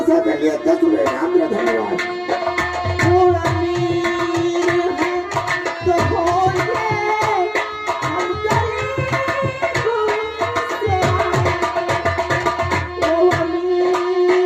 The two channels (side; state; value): both; identical; correlation 1.00